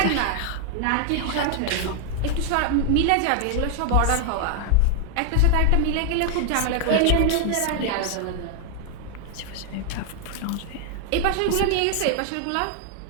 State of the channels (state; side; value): different; both; correlation 0.00